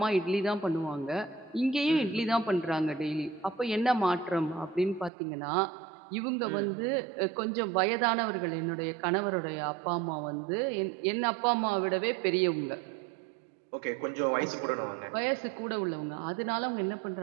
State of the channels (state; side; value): drops out; left; at 5.1 s